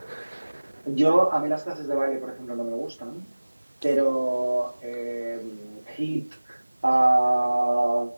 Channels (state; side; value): inverted; both; correlation -1.00